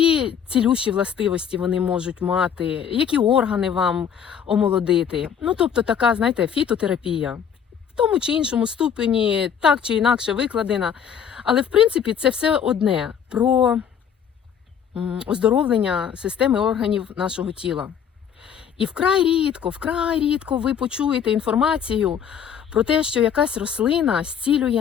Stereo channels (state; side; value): quieter; right; 8.0 dB